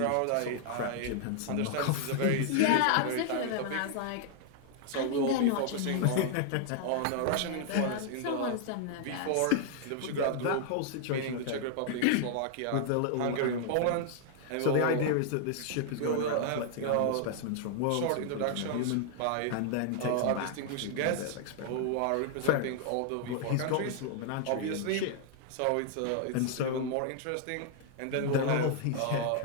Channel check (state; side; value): different; both; correlation 0.00